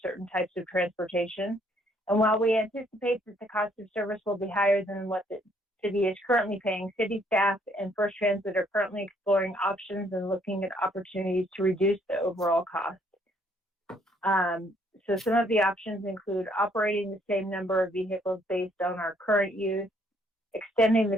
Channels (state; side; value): normal; both; correlation 0.66